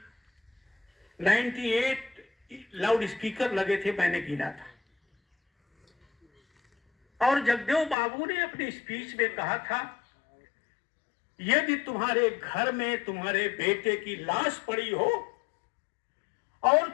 98 लाउड स्पीकर लगे थे, मैंने गिना था। और जगदेव बाबू ने अपनी स्पीच में कहा था, यदि तुम्हारे घर में तुम्हारे बेटे की लाश पड़ी हो और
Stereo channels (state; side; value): drops out; right; at 8.0 s